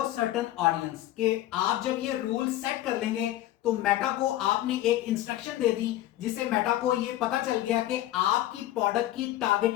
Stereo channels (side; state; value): right; quieter; 14.3 dB